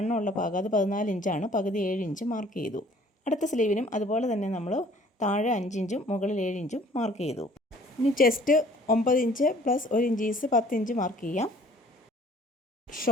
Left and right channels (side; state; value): both; normal; correlation 0.54